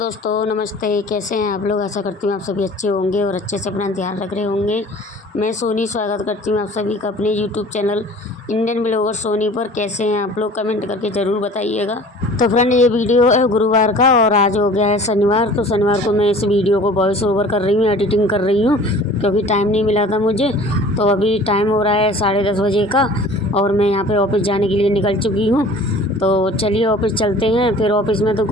नमस्ते। कैसे हैं आप लोग? आशा करती हूँ आप सभी अच्छे होंगे और अच्छे से अपना ध्यान रख रहे होंगे। मैं सोनी स्वागत करती हूँ आप सभी का अपने YouTube channel Indian blogger Soni पर। कैसे हैं आप लोग? कमेंट करके ज़रूर बताइएगा। तो फ्रेंड, ये वीडियो है गुरुवार का और आज हो गया है शनिवार। तो शनिवार को मैं इस वीडियो को वॉइस ओवर कर रही हूँ, एडिटिंग कर रही हूँ क्योंकि टाइम नहीं मिला था मुझे। तो अभी टाइम हो रहा है 10:30 बजे का और मैं यहाँ पे ऑफिस जाने के लिए निकल चुकी हूँ। तो चलिए ऑफिस चलते हैं। फिर ऑफिस में तो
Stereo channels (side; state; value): both; normal; correlation 0.46